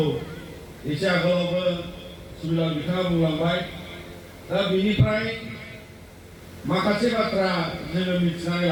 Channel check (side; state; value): both; identical; correlation 1.00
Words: एसे आगोलावबो सुबिलाल बिथाङा बुंलांबाय। दा बेनिफ्राय माखासे बाथ्रा जोङो मिथिनानै